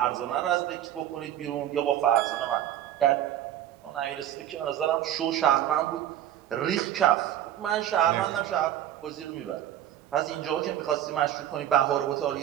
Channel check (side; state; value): left; quieter; 11.7 dB